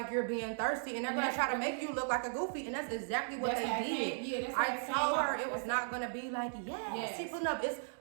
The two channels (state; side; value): silent; left; digital silence